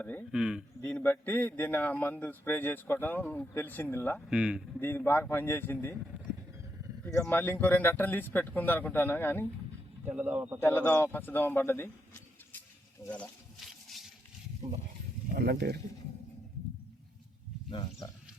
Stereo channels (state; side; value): normal; both; correlation 0.81